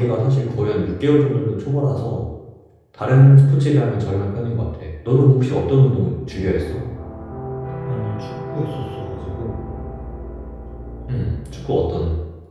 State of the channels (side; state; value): both; identical; correlation 1.00